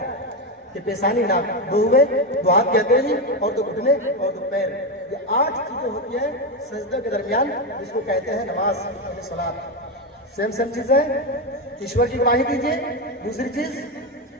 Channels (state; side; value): normal; both; correlation 0.11